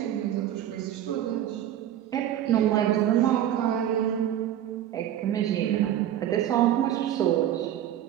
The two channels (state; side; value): quieter; left; 11.4 dB